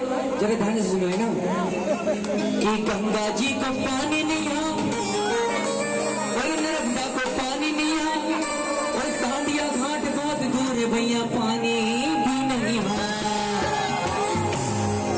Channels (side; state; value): both; identical; correlation 1.00